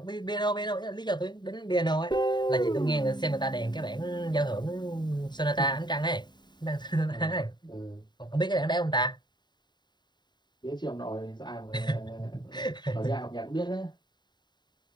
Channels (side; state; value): right; late; 0.21 ms